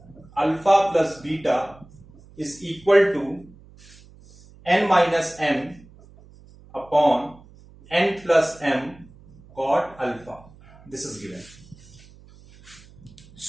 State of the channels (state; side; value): noise; right; hum, 24 dB below the sound